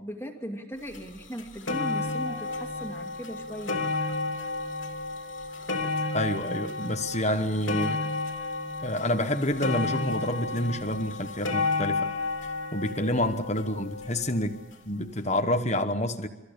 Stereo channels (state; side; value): normal; both; correlation 0.10